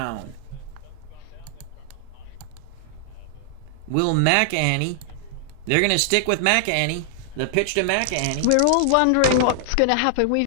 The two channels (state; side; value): different; both; correlation -0.01